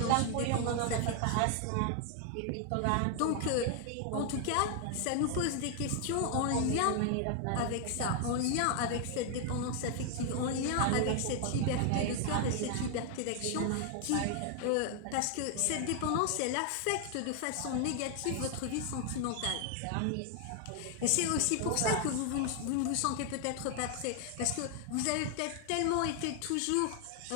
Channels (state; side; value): different; both; correlation 0.00